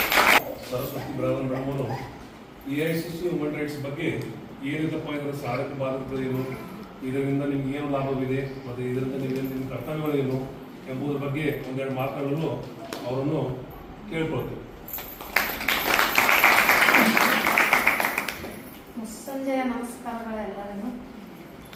ಸರಸ್ವತಿ ಬಿರಾದರ್ ಮೇಡಮ್ ಅವರು AICC ವುಮನ್ ರೈಟ್ಸ್ ಬಗ್ಗೆ ಏನಿದಪ್ಪ ಇದರ ಸಾಧಕ ಬಾಧಕಗಳೇನು, ಇದರಿಂದ ನಿಮ್ಗೆ ಏನು ಲಾಭವಿದೆ ಮತ್ತು ಇದರಿಂದ ನಿಮ್ಮ ಕರ್ತವ್ಯಗಳೇನು ಎಂಬುದರ ಬಗ್ಗೆ ಒಂದೆರಡು ಮಾತುಗಳನ್ನು ಅವರನ್ನು ಕೇಳ್ಕೊಳ್ತೇವೆ. ಸಂಜೆಯ ನಮಸ್ಕಾರಗಳೆಲ್ಲರಿಗೂ.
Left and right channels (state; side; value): identical; both; correlation 1.00